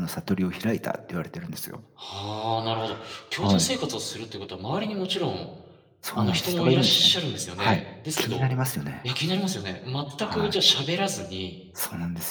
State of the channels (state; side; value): identical; both; correlation 1.00